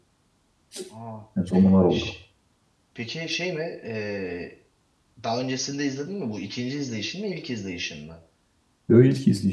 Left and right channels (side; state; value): both; identical; correlation 1.00